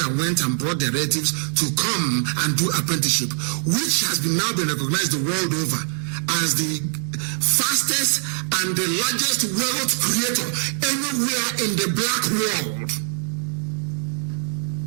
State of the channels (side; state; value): left; silent; 64 dB below the other